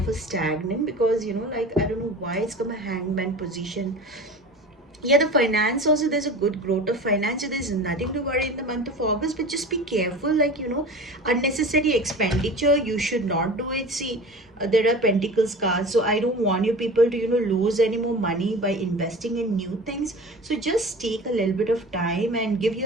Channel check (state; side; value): normal; both; correlation 0.36